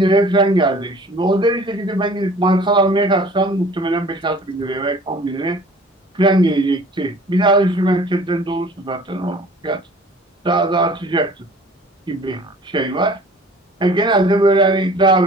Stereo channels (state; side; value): normal; both; correlation 0.48